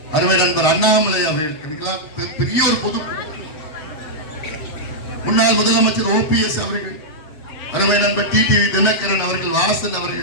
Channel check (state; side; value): late; right; 7.7 ms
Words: அருமை நண்பர் அண்ணாமலை அவர்களுக்கு பெரிய ஒரு பொது, முன்னாள் முதலமைச்சர் OPS அவர்கள், அருமை நண்பர் டிடிவி தினகரன் அவர்கள், வாசன்